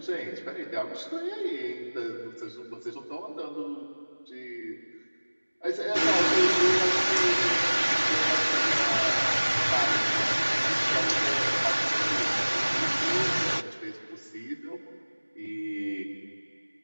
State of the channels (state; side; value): inverted; both; correlation -1.00